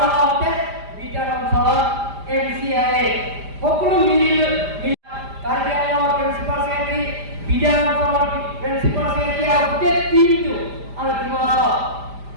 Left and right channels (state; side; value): late; left; 5.0 ms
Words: লগতে বিপিএল অঞ্চলত এমচিএলএ সকলো মিলি কাৰ্বিআংলঙৰ প্ৰিন্সিপাল ছেক্ৰেটাৰী বিদ্যালয় অঞ্চলৰ প্ৰিন্সিপাল ছেক্ৰেটাৰী আৰু গোটেই টিমটো আৰু